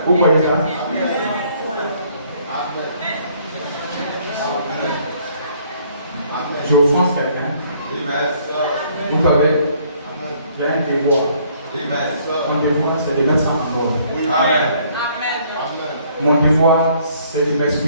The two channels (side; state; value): both; inverted; correlation -0.62